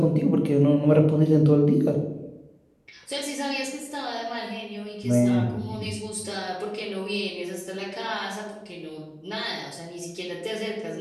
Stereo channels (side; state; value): both; identical; correlation 1.00